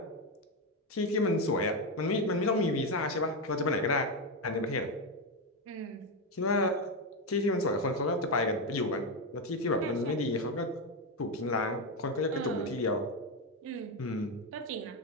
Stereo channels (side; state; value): both; normal; correlation 0.09